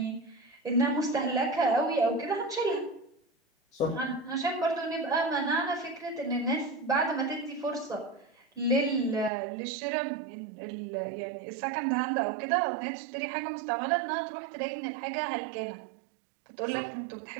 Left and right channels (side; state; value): left; drops out; at 9.3 s